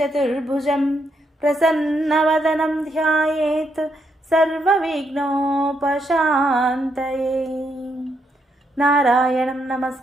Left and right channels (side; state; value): both; normal; correlation 0.78